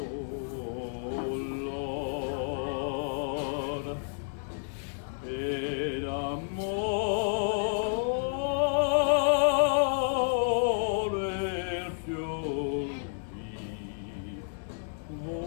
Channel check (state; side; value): silent; right; digital silence